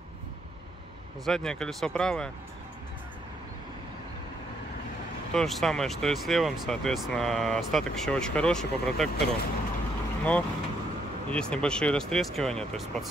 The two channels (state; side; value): normal; both; correlation 0.73